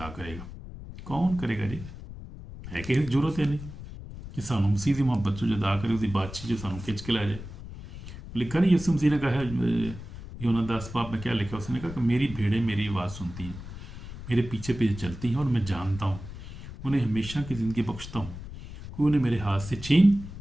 करेगा? कौन करेगा जी? है कि जरूरत है नहीं कि सानू मसीह की मोहब्बत से जुदा करे, उसकी बातचीत जो सानू खिंच के लै जाए। लिखा नहीं यसु मसीह ने कहा है यूहन्ना 10 में क्या लिखा? उसने कहा कि मेरी भेड़ें मेरी आवाज़ सुनती हैं, मेरे पीछे पीछे चलती हैं और मैं जानता हूँ, उन्हें हमेशा की ज़िंदगी बख्शता हूँ, कोई उन्हें मेरे हाथ से छीन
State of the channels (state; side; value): noise; left; rumble, 12 dB below the sound